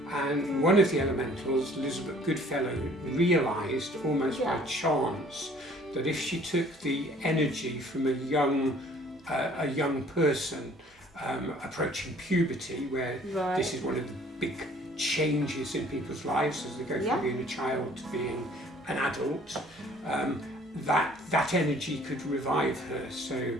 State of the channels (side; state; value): both; normal; correlation 0.55